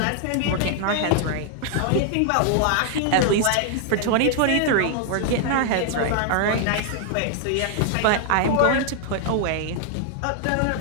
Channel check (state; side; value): different; both; correlation 0.00